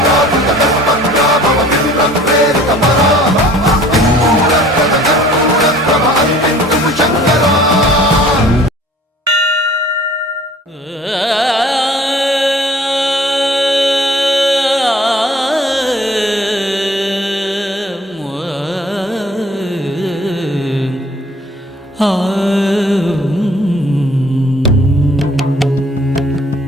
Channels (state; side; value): normal; both; correlation 0.52